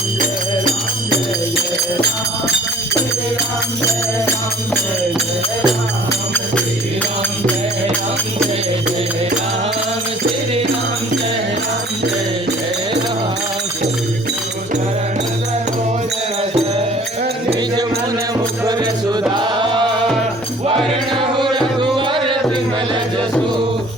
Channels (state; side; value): normal; both; correlation 0.51